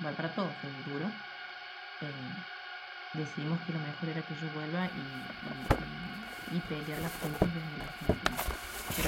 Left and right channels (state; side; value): identical; both; correlation 1.00